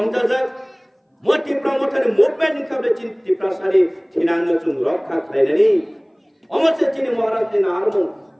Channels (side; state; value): both; identical; correlation 1.00